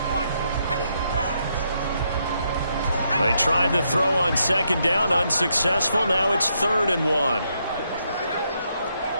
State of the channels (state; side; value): inverted; both; correlation -0.78